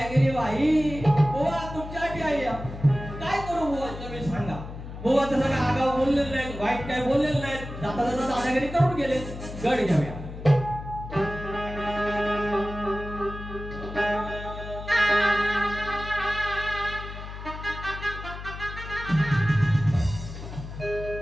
केली बाई. बुवा तुमच्यासाठी आहे, काय करू बुवा तुम्ही सांगा. बुवा तसं काय आगाव बोललेलं नाही, वाईट काय बोललेलं नाही, जाता जाता दादागिरी करून गेले. गड घेऊया.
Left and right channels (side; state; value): left; noise; hum, 10 dB below the sound